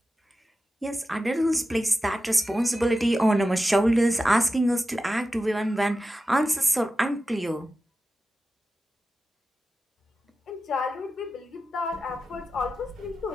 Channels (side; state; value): both; normal; correlation 0.93